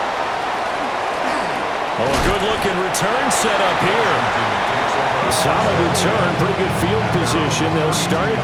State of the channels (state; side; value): identical; both; correlation 1.00